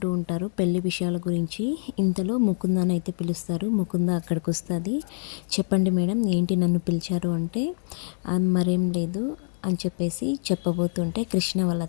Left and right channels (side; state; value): right; silent; digital silence